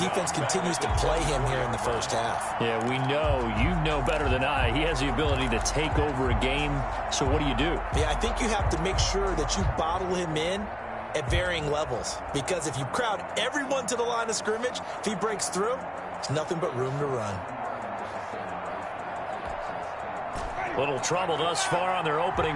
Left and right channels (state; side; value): identical; both; correlation 1.00